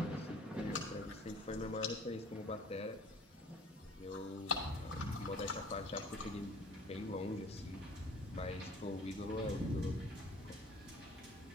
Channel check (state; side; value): normal; both; correlation 0.49